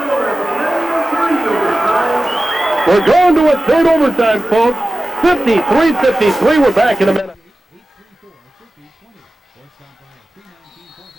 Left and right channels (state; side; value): normal; both; correlation 0.96